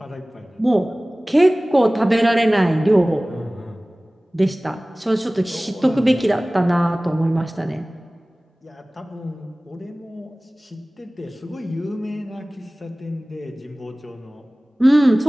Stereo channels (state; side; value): normal; both; correlation 0.98